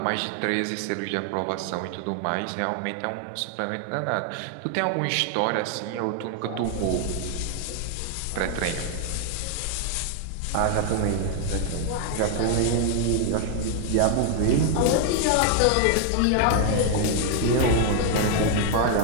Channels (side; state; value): both; different; correlation 0.00